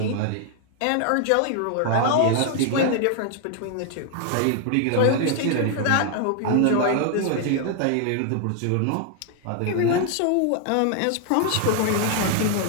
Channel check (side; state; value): both; different; correlation 0.00